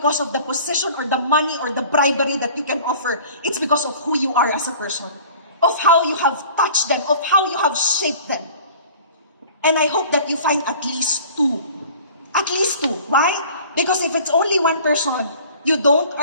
of the position or the money or the bribery that you can offer. It's because of who you are as a person, of how you have touched them, of how you have shaped them. And I hope that you find at least two. At least two. Why? Because if it's only one person, you don't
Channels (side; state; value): both; inverted; correlation -0.46